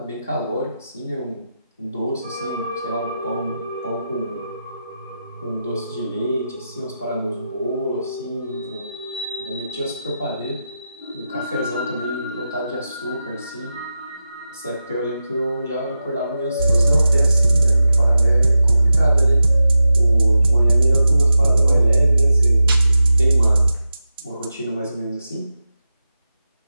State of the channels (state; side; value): inverted; both; correlation -0.91